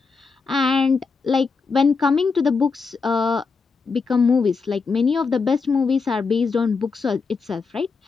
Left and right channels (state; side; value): quieter; right; 4.8 dB